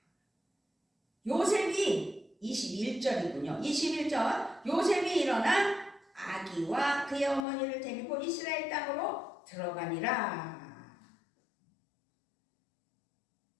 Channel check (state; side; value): drops out; right; at 7.5 s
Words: 요셉이 21절이군요. 21절 요셉이 일어나 아기와 그의 어머니를 데리고 이스라엘 땅으로 들어가니라.